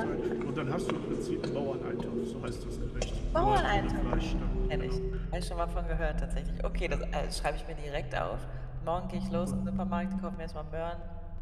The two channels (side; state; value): both; identical; correlation 1.00